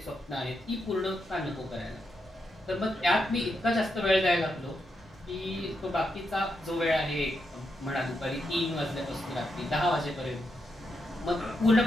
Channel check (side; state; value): both; normal; correlation 0.83